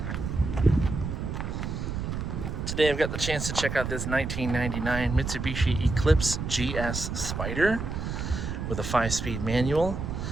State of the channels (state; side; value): noise; right; rumble, 4 dB below the sound